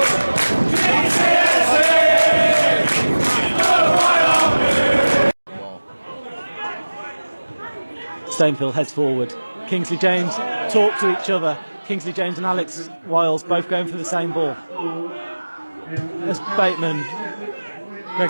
Stainfield heads forward. Kingsley James talk to each other. Kingsley James and Alex Wiles both going for the same ball. As Bateman, Greg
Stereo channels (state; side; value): inverted; both; correlation -1.00